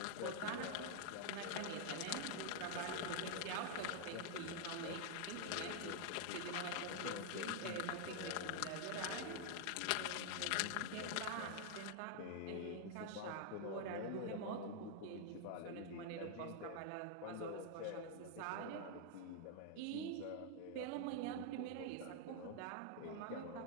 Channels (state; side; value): different; both; correlation 0.00